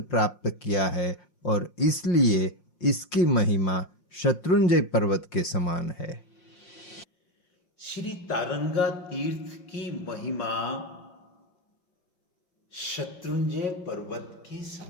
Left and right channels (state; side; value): late; right; 5.6 ms